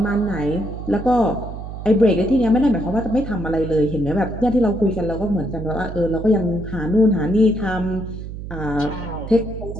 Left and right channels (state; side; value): noise; right; hum, 9 dB below the sound